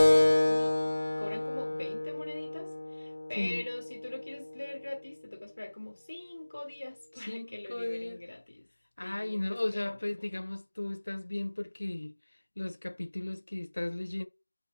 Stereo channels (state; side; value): inverted; both; correlation -1.00